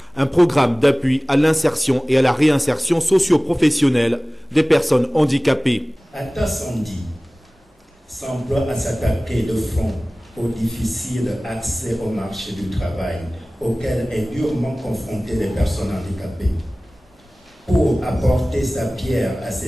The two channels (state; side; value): normal; both; correlation 0.98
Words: un programme d'appui à l'insertion et à la réinsertion socio-professionnelle des personnes handicapées. ATAS Handi s'emploie à s'attaquer de front au difficile accès au marché du travail auquel est durement confrontée les personnes handicapées. Pour apporter sa pierre à